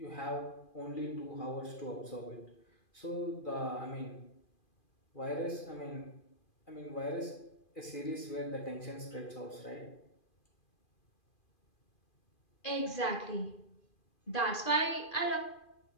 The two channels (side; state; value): right; late; 2.4 ms